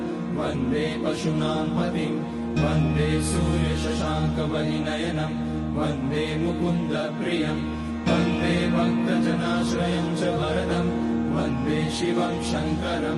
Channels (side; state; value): both; identical; correlation 1.00